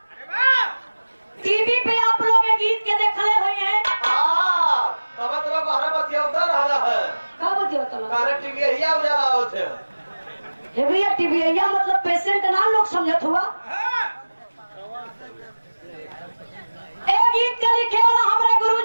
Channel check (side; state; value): both; inverted; correlation -1.00